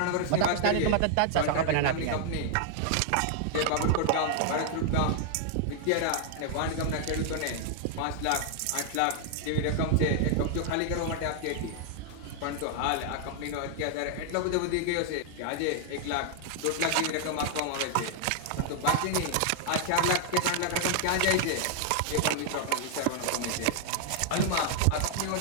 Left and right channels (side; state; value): both; different; correlation 0.00